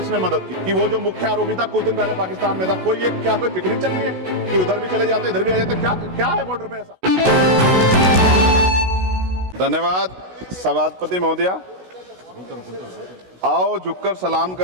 मदद की? कि वो जो मुख्य आरोपी था कुछ दिन पहले पाकिस्तान में था, कोई पिकनिक चल रही है कि उधर भी चले जाते इधर भी आ जाते? क्या है बॉर्डर पे ऐसा? धन्यवाद सभापति महोदया। आओ झुककर सलाम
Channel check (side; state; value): left; late; 16 ms